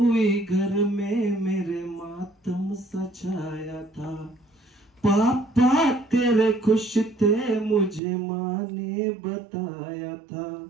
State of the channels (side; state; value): left; drops out; at 8.0 s